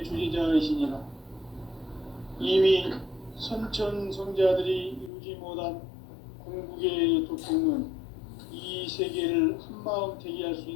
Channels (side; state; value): right; drops out; at 5.1 s